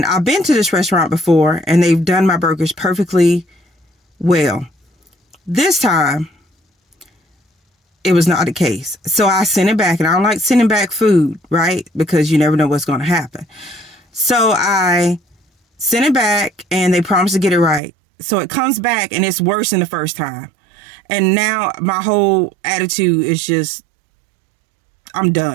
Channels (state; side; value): drops out; left; at 17.8 s